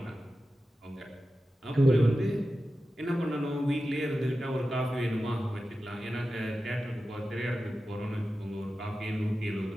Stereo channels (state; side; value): normal; both; correlation 0.93